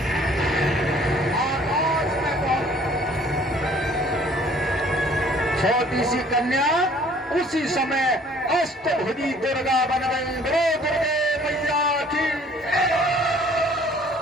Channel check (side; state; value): both; normal; correlation 0.56